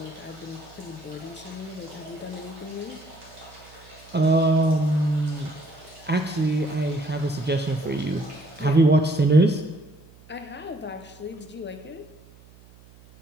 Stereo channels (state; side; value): noise; right; hum, 24 dB below the sound